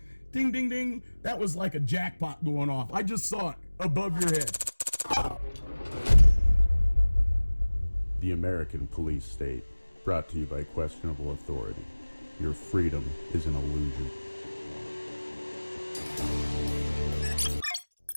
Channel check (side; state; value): both; inverted; correlation -1.00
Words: Ding, ding, ding. That was like a jackpot going off. I just saw it above your head. The American Police State, brought to you by Questionable Authority. Your freedom is an illusion.